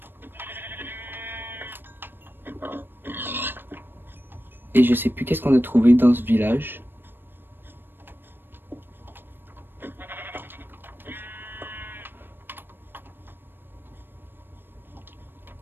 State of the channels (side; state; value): left; late; 0.097 ms